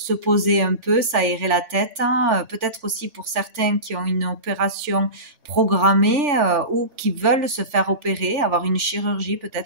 poser un peu, s'aérer la tête, peut-être aussi pour certains qui ont une opération programmée ou qui veulent se faire opérer, avoir une chirurgie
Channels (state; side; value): late; left; 3.4 ms